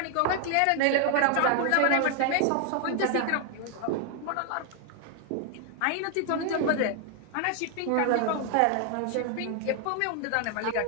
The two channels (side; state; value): both; different; correlation 0.00